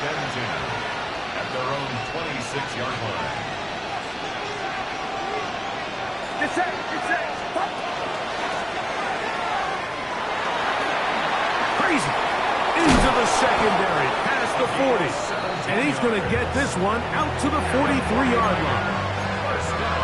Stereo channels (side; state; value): both; identical; correlation 1.00